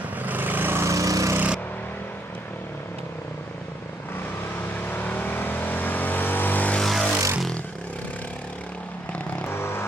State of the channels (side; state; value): both; normal; correlation 0.72